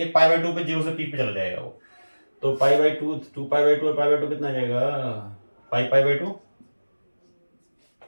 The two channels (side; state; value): both; inverted; correlation -1.00